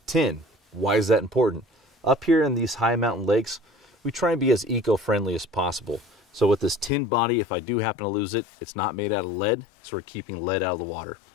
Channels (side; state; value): right; drops out; at 6.9 s